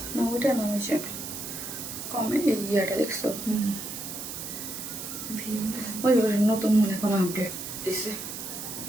না, ওইটা না, হয়েছে কমে এই ইয়েটা দেখছো? ওই নতুন মনে কোনো আপডেট দিছে,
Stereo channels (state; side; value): noise; right; hiss, 7 dB below the sound